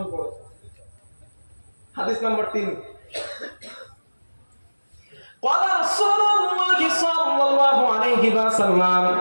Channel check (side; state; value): both; inverted; correlation -1.00